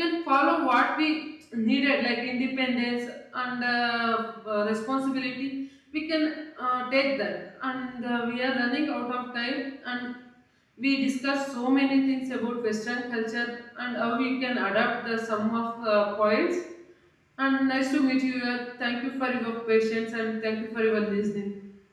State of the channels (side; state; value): both; identical; correlation 1.00